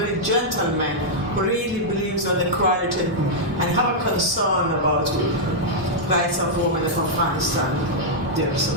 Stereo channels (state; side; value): normal; both; correlation -0.06